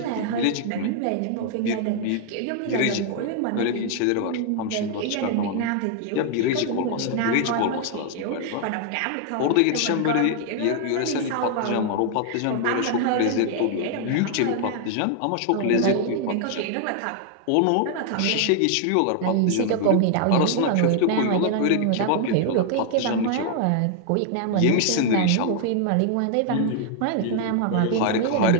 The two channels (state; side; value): different; both; correlation 0.00